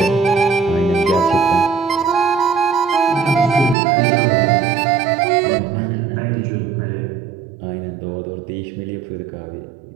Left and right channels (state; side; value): drops out; left; at 3.8 s